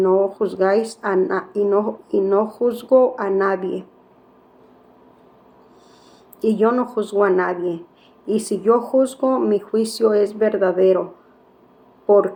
juzgáis y no juzgo a nadie. Y yo no juzgo a nadie. Y si yo juzgo, mi juicio es verdadero,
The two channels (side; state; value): both; identical; correlation 1.00